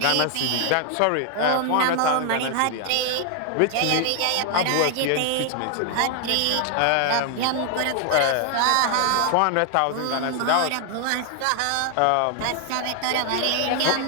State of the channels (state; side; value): different; both; correlation 0.00